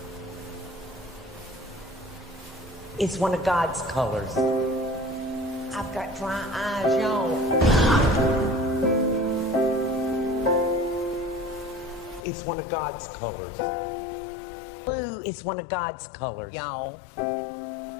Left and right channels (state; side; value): drops out; right; at 12.2 s